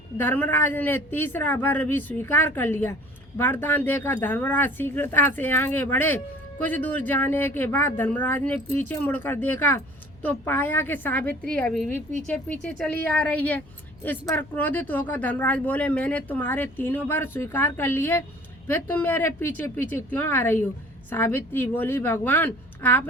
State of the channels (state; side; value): noise; left; hum, 26 dB below the sound